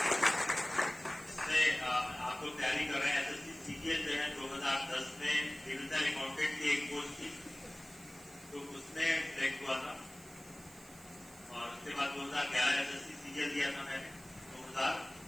आप लोग तैयारी कर रहे हैं। एसएससी सीजीएल जो है 2010 में डिविजनल अकाउंटेंट की एक पोस्ट थी, तो उसमें सिलेक्ट हुआ था। और उसके बाद 2011 एसएससी सीजीएल दिया था मैंने,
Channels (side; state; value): right; noise; hiss, 20 dB below the sound